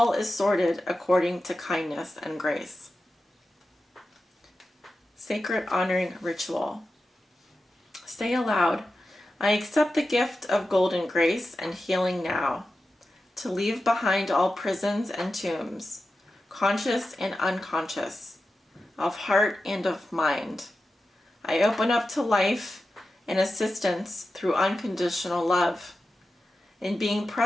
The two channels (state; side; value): normal; both; correlation 0.92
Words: is sorted according to kindness and grace. Sacred honoring ritual. Say aloud, I accept the gift of golden grace and healing now, to leave behind all prisons and tombs, conscious and unconscious, of heart and of mind. I open up to life and assistance through unconditional love, in being